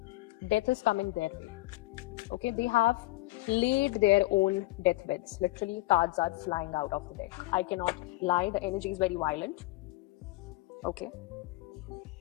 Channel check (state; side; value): quieter; right; 20.1 dB